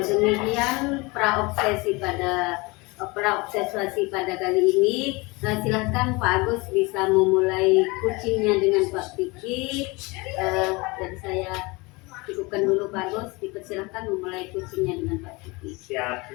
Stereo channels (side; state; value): right; quieter; 25.4 dB